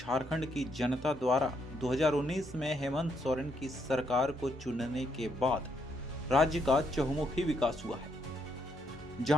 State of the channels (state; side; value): normal; both; correlation 0.75